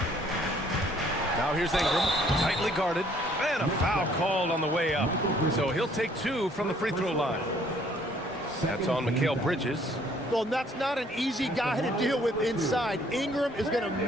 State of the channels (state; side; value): normal; both; correlation 0.61